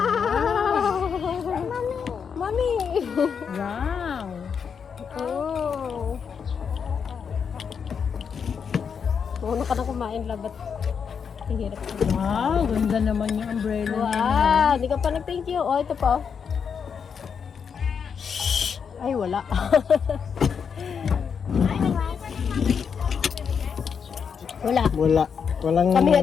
Mami! Wow. Oh. Una ka na kumain, labat. Ang hirap. Wow, ganda naman yung umbrella niya. Wow! Hindi ka pa nag-thank you. Oh, ito pa. Shhh! Ay, wala. Wala. Wala. Walang... Kami nga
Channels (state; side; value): quieter; right; 6.7 dB